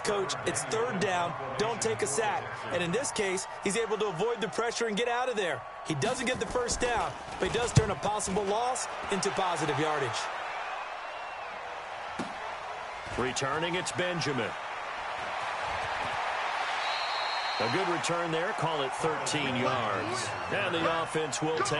coach, it's 3rd down, don't take a sack. And in this case, he's able to avoid the pressure and get out of there. He doesn't get the 1st down, but he does turn a possible loss into positive yardage. Returning, it's Benjamin. A good return there, call it 13 yards. And the offense will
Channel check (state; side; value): identical; both; correlation 1.00